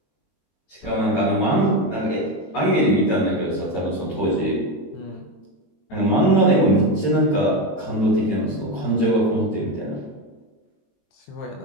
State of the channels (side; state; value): right; late; 22 ms